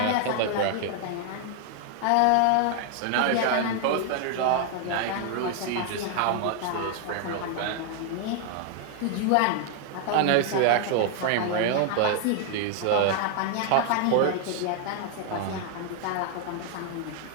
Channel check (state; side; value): different; both; correlation 0.00